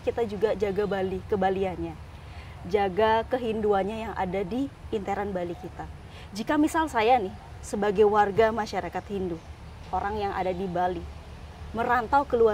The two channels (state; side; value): identical; both; correlation 1.00